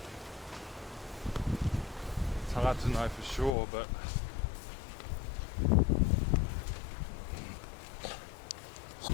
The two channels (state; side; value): drops out; right; at 3.6 s